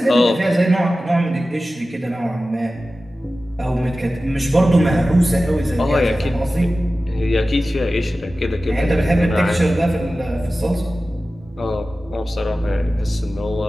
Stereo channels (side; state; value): both; normal; correlation 0.95